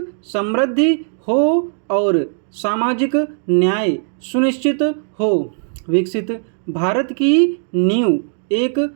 समृद्धि हो और सामाजिक न्याय सुनिश्चित हो। विकसित भारत की नींव एक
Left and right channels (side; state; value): left; silent; digital silence